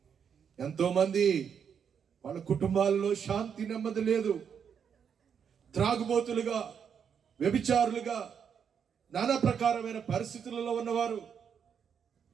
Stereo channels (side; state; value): left; quieter; 7.4 dB